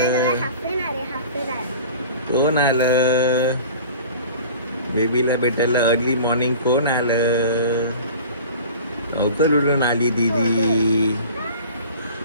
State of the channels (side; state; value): both; inverted; correlation -0.42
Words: कोण आलं बेबीला भेटायला अर्ली मॉर्निंग? कोण आलं? लवकर उठून आली दीदी,